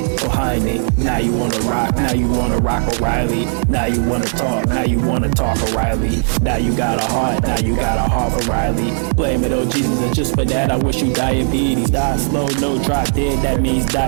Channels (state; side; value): silent; left; 58 dB below the other